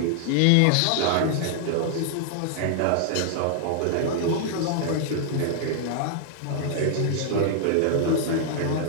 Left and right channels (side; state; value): both; different; correlation -0.01